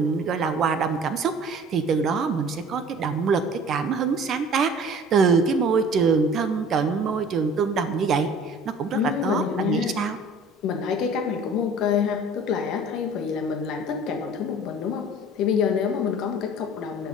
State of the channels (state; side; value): normal; both; correlation 0.47